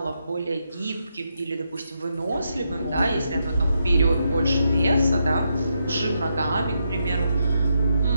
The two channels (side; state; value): both; inverted; correlation -0.81